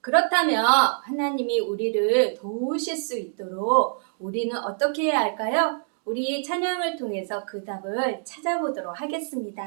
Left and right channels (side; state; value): left; silent; digital silence